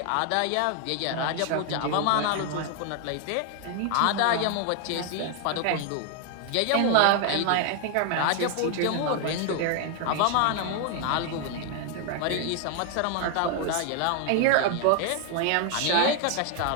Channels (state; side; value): different; both; correlation 0.00